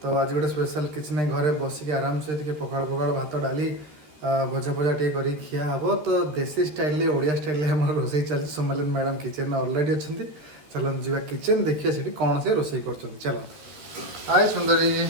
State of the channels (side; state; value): left; late; 13 ms